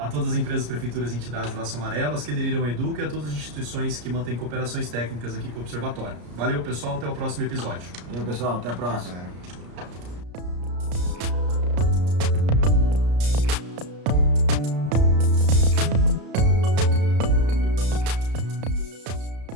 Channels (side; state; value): left; late; 34 ms